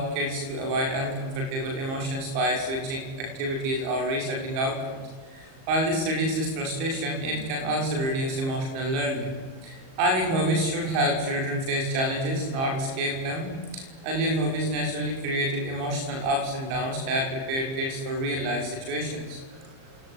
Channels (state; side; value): late; left; 38 ms